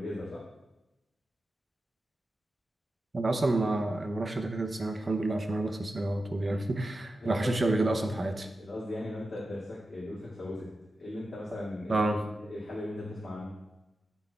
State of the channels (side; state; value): both; normal; correlation 0.91